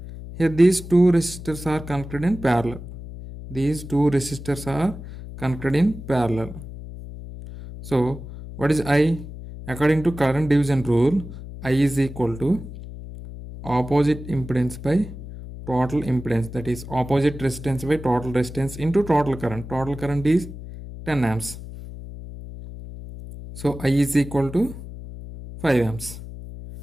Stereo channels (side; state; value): left; noise; hum, 12 dB below the sound